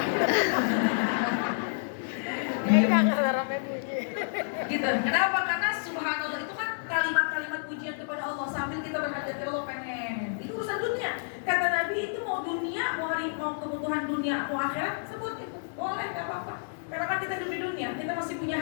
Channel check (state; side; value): silent; right; digital silence